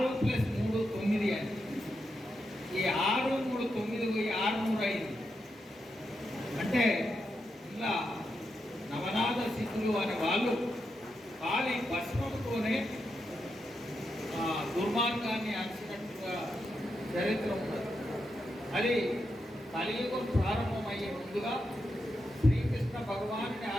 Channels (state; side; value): normal; both; correlation 0.85